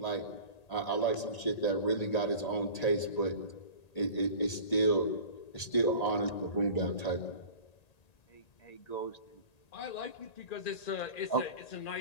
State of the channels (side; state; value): right; late; 1.8 ms